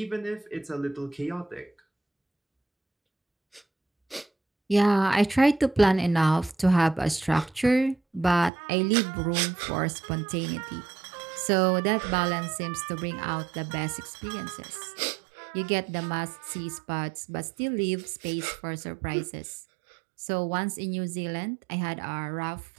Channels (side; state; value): left; drops out; at 8.5 s